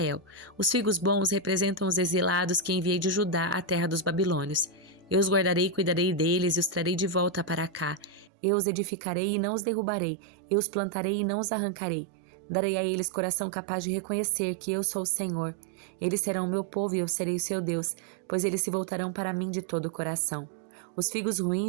Os figos bons representam os exilados que enviei de Judá à terra dos babilônios. Eu os guardarei e cuidarei deles e os trarei de volta para cá. Eu os edificarei e não os derrubarei. Eu os plantarei e não os arrancarei. Darei a eles coração capaz de reconhecer que eu sou o Senhor. Eles serão o meu povo e eu serei o seu Deus, pois eles se voltarão para mim de todo o coração. Os figos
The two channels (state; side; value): drops out; left; at 8.3 s